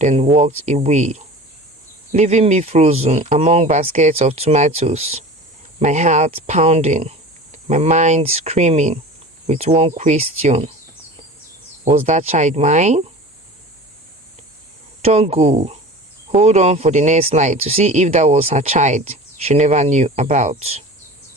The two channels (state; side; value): normal; both; correlation 0.37